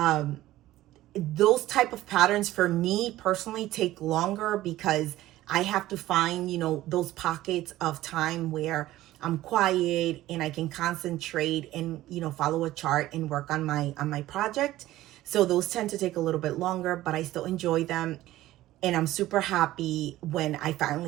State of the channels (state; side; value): quieter; left; 15.5 dB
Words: Those type of patterns for me personally take longer because I have to find, you know, those pockets of time where I'm quiet and I can concentrate and, you know, follow a chart and work on my project. So those tend to take a little bit longer, but I still enjoy them. And I'm super happy when I